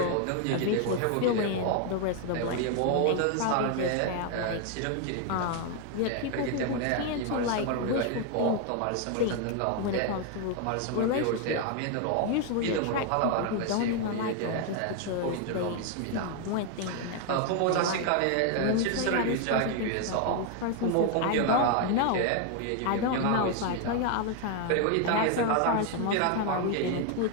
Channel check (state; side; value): different; both; correlation 0.01